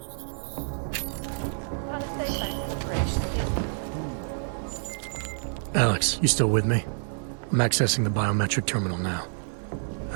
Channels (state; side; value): silent; left; digital silence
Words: Palisade Bank Corporation. Alex, you still with me? I'm accessing the biometric terminal now.